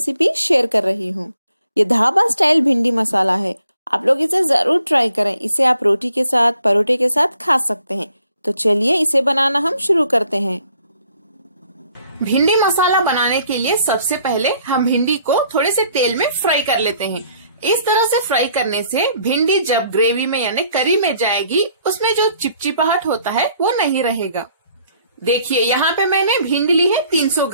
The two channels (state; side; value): inverted; both; correlation -0.64